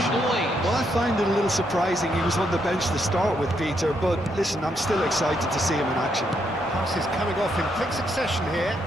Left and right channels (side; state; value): both; normal; correlation 0.77